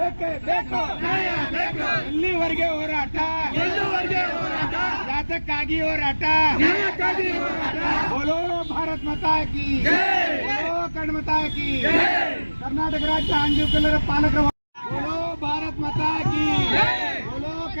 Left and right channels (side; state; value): both; inverted; correlation -1.00